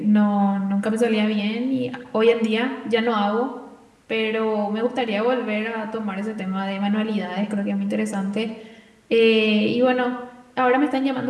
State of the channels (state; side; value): identical; both; correlation 1.00